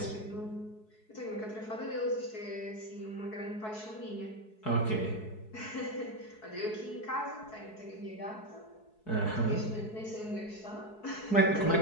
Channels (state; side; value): late; right; 4.7 ms